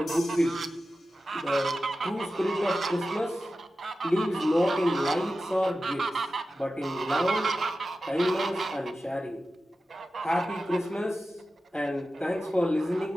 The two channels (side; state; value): both; normal; correlation 0.93